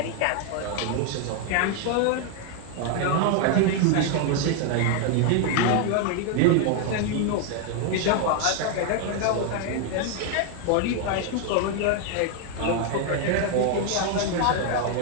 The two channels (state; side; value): different; both; correlation 0.00